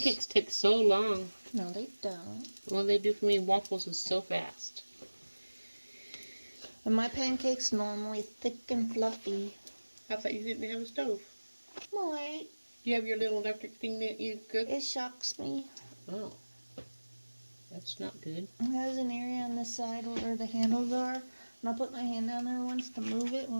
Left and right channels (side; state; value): both; inverted; correlation -1.00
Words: take so long. No, they don't. All they do for me, waffles, is so fast. And my pancakes normally thick and fluffy. I thought you didn't have a stove. Wait, You have your little electric thing that you cook? it shocks me. Oh. That's not good. It has an area on the side where the handles are And I put my hand down there once to move it